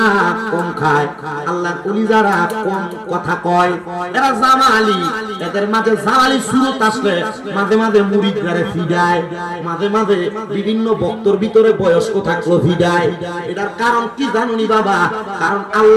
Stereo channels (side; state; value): both; identical; correlation 1.00